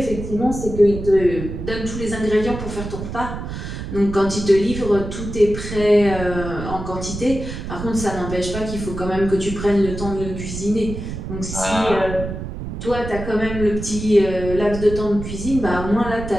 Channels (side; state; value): right; noise; rumble, 7 dB below the sound